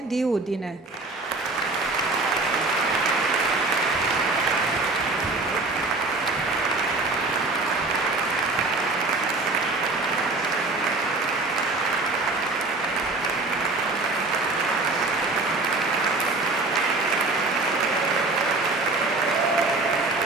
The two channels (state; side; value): quieter; left; 3.4 dB